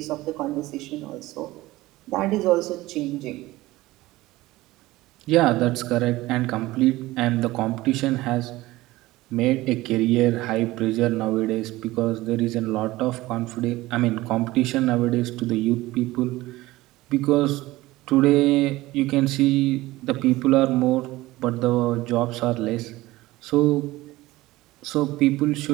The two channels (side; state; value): left; quieter; 18.4 dB